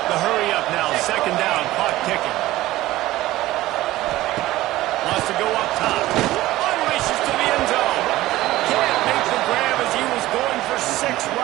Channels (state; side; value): quieter; left; 16.5 dB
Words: The hurry up now. Second down. Clock ticking. Wants to go up top. Unleashes to the end zone. Can't make the grab as he was going for 6